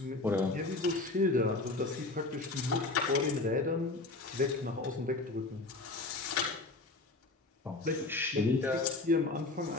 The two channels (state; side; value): quieter; right; 3.2 dB